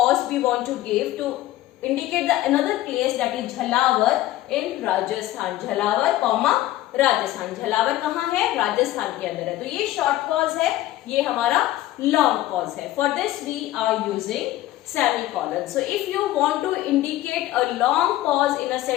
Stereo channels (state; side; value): quieter; right; 15.3 dB